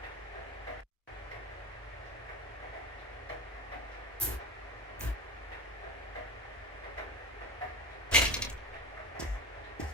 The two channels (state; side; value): normal; both; correlation 0.27